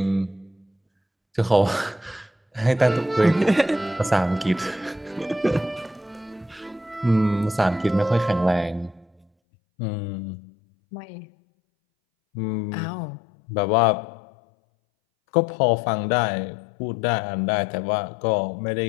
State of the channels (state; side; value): drops out; right; at 9.2 s